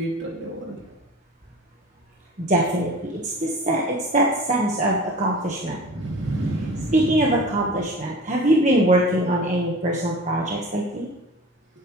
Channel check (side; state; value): both; normal; correlation 0.37